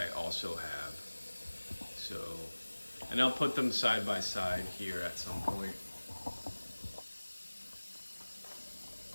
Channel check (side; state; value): both; inverted; correlation -1.00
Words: also have. So, and I'll put them side by side here at some point.